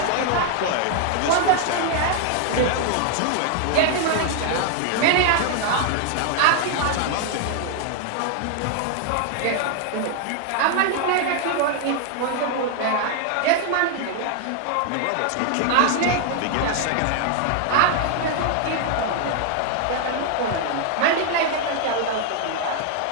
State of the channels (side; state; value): both; different; correlation 0.00